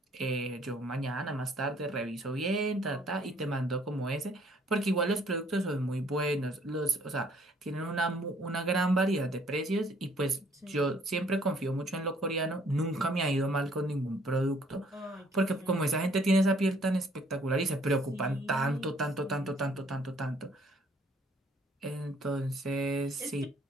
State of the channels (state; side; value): normal; both; correlation 0.61